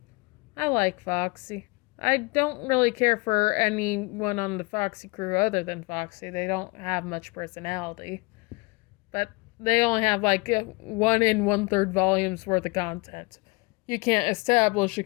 I like Foxy. I don't really care for anyone on the Foxy crew other than Foxy. They don't have much personality. But they only have like 1 1/3 volumes worth of content. You can't establish a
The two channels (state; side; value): quieter; right; 26.5 dB